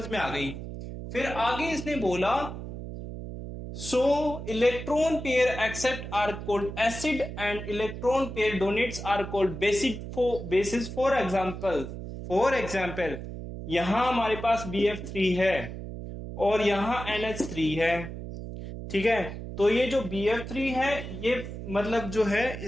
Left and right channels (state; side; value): noise; right; hum, 9 dB below the sound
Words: में आ गई। फिर आगे इसने बोला, so electron pair accept are called acid and electron pair donates are called basis. For example यहां हमारे पास BF3 है और यहां NH3 है, ठीक है। तो ये जो BF3 है ये मतलब जो है